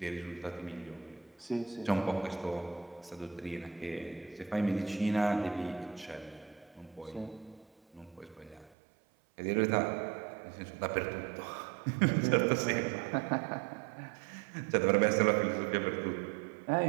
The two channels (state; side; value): drops out; left; at 8.8 s